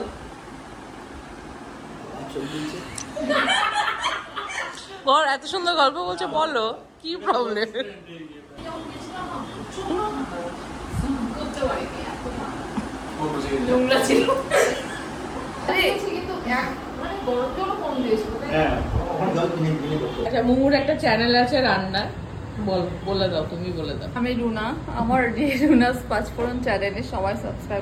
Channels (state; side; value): identical; both; correlation 1.00